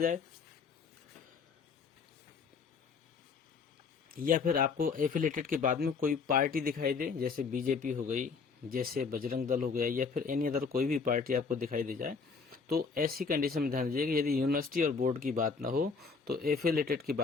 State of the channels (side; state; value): right; quieter; 5.1 dB